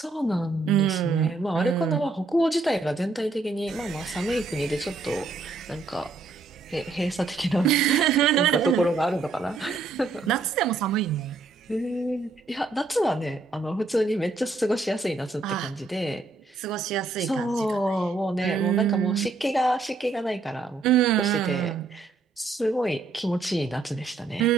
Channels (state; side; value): quieter; left; 3.6 dB